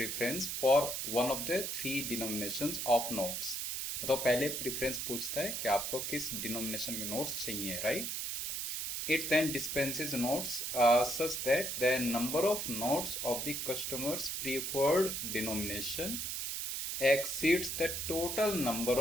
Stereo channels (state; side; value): noise; right; hiss, 3 dB below the sound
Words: for one of the 3 denominations of notes. तो पहले प्रेफरेंस पूछता है कि आपको किस डिनोमिनेशन के नोट्स चाहिए, right. It then dispenses notes such that the number of notes of the customer's preferred denomination exceeds the total number